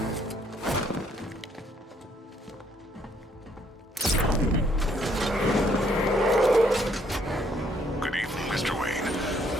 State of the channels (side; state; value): both; normal; correlation 0.67